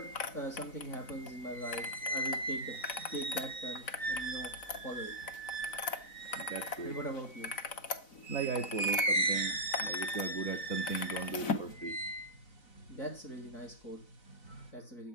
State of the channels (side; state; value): right; late; 4.0 ms